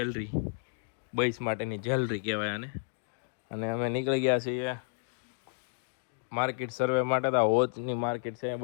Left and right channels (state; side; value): silent; right; digital silence